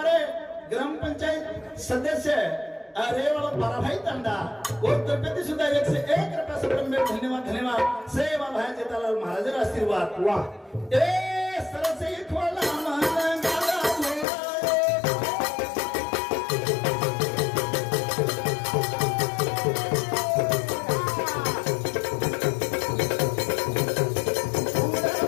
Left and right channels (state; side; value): drops out; right; at 14.2 s